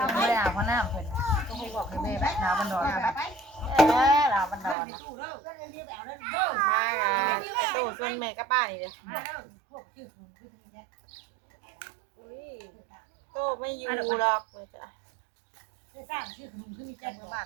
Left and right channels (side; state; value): left; drops out; at 4.8 s